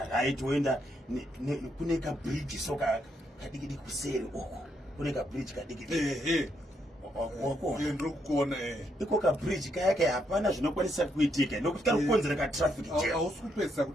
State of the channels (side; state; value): both; normal; correlation 0.77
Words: right woenda kune kabridge soka kadikidi kuseri uko kune kabridge kadikidi ndikuona iko kabridge kayake hapana zvinokwanisa kuitika nokuti kari kukonzera katraffic jam. Hausi kupedzisa